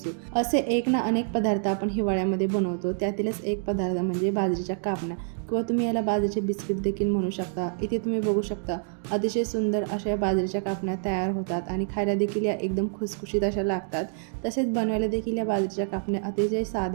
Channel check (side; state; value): left; silent; 60 dB below the other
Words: असे एक ना अनेक पदार्थ आपण हिवाळ्यामध्ये बनवतो। त्यातीलच एक पदार्थ म्हणजे बाजरीच्या कापण्या किंवा तुम्ही याला बाजरीचे बिस्किट देखील म्हणू शकता। इथे तुम्ही बघू शकता अतिशय सुंदर अशा बाजरीच्या कापण्या तयार होतात आणि खायला देखील या एकदम खुसखुशीत अशा लागतात। तसेच बनवायला देखील या बाजरीच्या कापण्या अतिशय